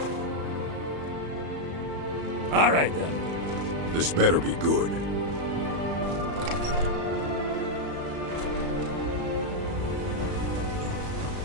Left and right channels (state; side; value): late; left; 35 ms